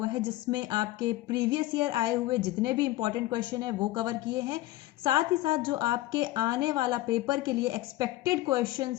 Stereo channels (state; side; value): quieter; right; 17.0 dB